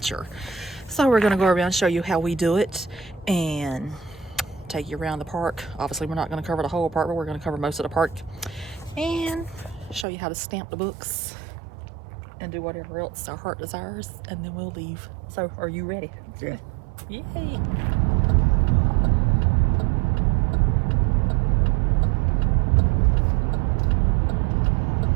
So we're gonna go around and show you how we do it and take you around the park. Obviously we're not gonna cover the whole park, but we're gonna cover most of the park and show you how to stamp the books and do whatever else our heart desires, and then we'll leave. So, are you ready? Yeah. Yay!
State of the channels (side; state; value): left; drops out; at 10.1 s